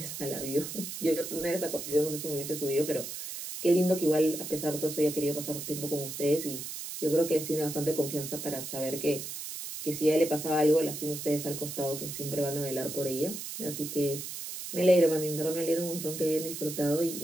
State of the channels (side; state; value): right; noise; hiss, 7 dB below the sound